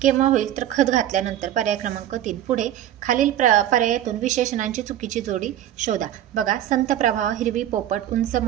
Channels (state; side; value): quieter; left; 11.9 dB